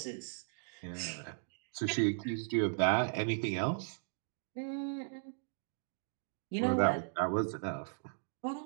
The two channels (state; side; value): silent; left; digital silence